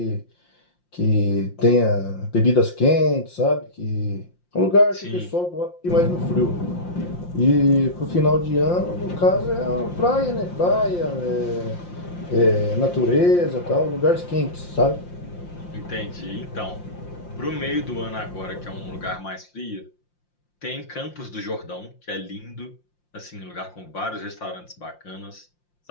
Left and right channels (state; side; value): late; right; 5.7 ms